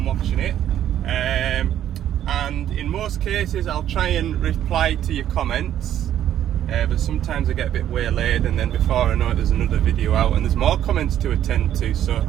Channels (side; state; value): left; quieter; 11.0 dB